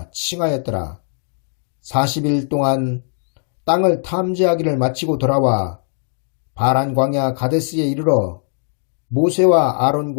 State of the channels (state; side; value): silent; right; digital silence